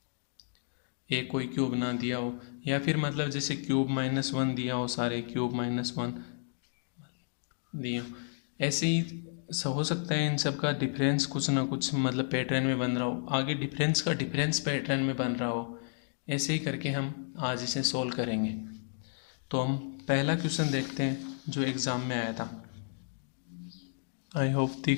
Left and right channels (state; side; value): silent; right; digital silence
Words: एक कोई क्यूब ना दिया हो, या फिर मतलब जैसे क्यूब -1 दिया हो, सारे क्यूब -1 दिए हो। ऐसे ही हो सकता है इन सब का डिफरेंस कुछ ना कुछ मतलब पैटर्न में बन रहा हो, आगे डिफरेंस का डिफरेंस पैटर्न में बन रहा हो। ऐसे ही करके हम आज इसे सोल्व करेंगे। तो हम पहला क्वेश्चन देखते हैं जो एग्ज़ाम में आया था। आई होप